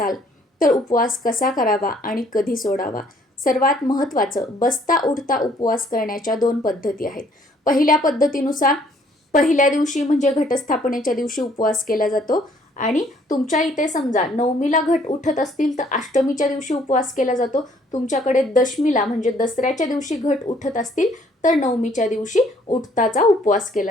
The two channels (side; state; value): both; normal; correlation 0.62